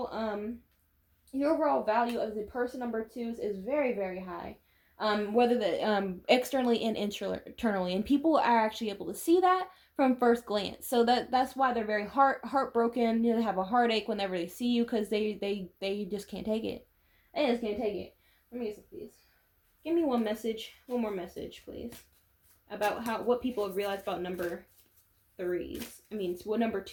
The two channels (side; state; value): both; identical; correlation 1.00